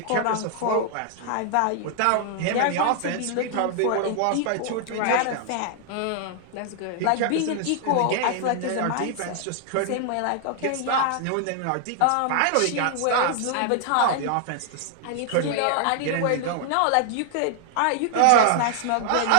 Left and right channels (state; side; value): different; both; correlation 0.00